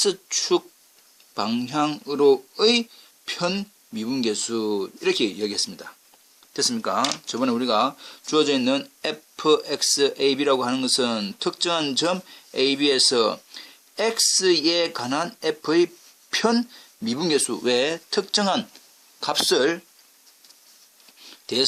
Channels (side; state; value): both; identical; correlation 1.00